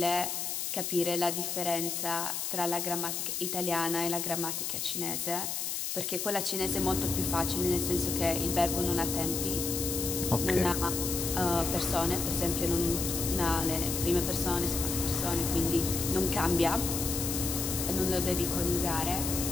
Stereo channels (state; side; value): noise; left; hiss, 2 dB below the sound